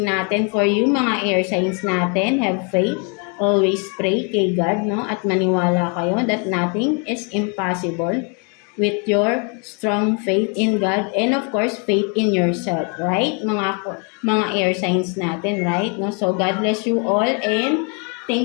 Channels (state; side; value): quieter; right; 36.7 dB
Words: natin for you, mga air signs natin. Have faith. Always pray kay God, no? At maniwala kayo that nothing is impossible with your strong faith in God and of course, faith in yourself, right? Mga air signs natin, right? No? So, God bless you all and